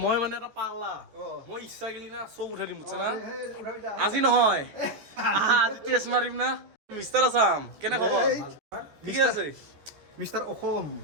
মই মানে এটা পাগলা মই ইচ্ছা গেলি না চৌ উঠাই দিম বুজিছ না আজি নহয় আজি টেষ্ট মাৰিম না মিষ্টাৰ আছাম কেনে খবৰ ঠিকে আছে মিষ্টাৰ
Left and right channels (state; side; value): late; left; 14 ms